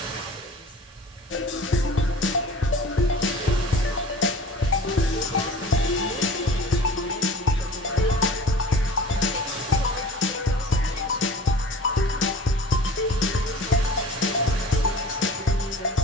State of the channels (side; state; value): both; normal; correlation 0.42